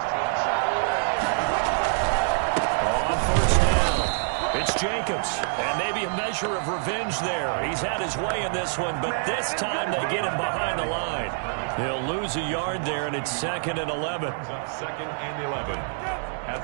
On first down, it's Jacobs, and maybe a measure of revenge there. He's had his way in this one, but this time they get him behind the line. He'll lose a yard there, and it's 2nd and 11. Second and 11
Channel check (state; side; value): silent; left; digital silence